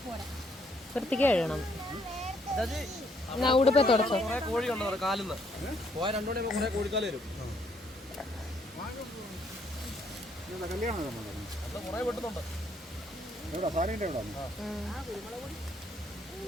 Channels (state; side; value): normal; both; correlation 0.69